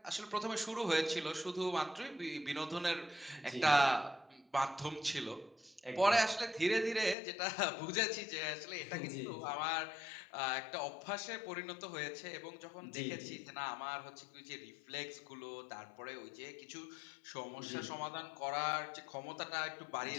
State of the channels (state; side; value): drops out; right; at 7.2 s